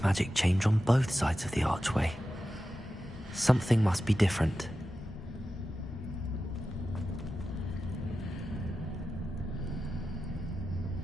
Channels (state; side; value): normal; both; correlation 0.92